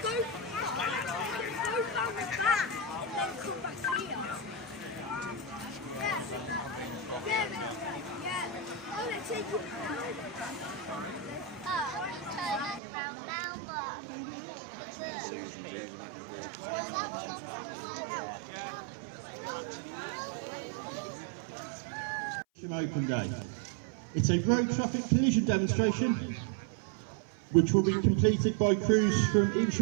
go round the back and then come back here. Yeah. Oh, they're taking it now. Open day. It's a road traffic collision demonstration which will be completed by crews from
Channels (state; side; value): drops out; left; at 12.8 s